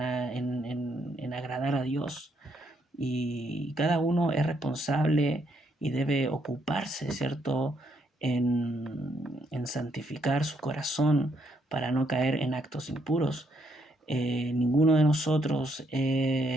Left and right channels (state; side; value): normal; both; correlation 0.74